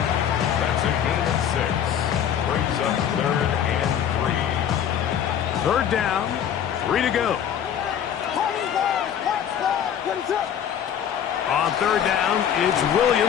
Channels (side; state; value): right; quieter; 9.1 dB